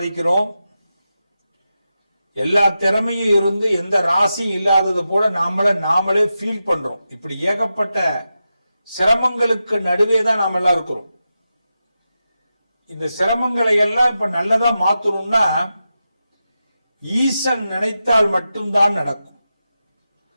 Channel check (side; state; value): both; inverted; correlation -0.90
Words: எல்லா திறமையும் இருந்து எந்த ராசியும் இல்லாதது போல நாமளே ஃபீல் பண்றோம். இப்படி ஏகப்பட்ட சிரமங்களுக்கு நடுவே தான் நாம எல்லாம் இருக்கிறோம். இந்த சிரமங்களை எல்லாம் இப்ப நல்லதா மாத்தணும்னா ஈசன் நினைத்தால் மட்டும்தான் நடக்கும்.